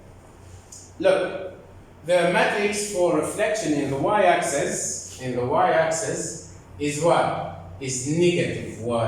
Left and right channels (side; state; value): both; identical; correlation 1.00